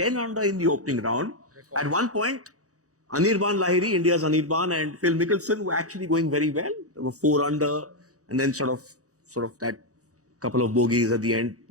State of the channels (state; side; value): late; left; 0.66 ms